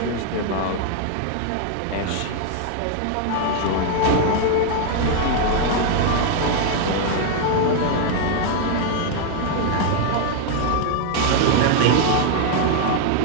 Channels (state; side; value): different; both; correlation 0.00